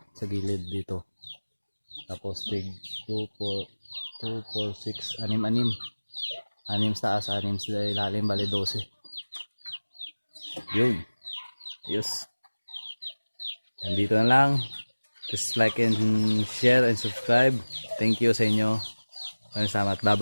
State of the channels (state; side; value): inverted; both; correlation -1.00